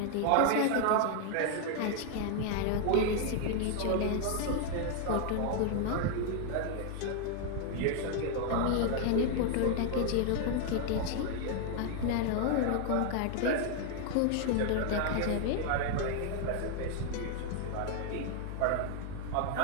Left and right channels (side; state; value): both; different; correlation 0.00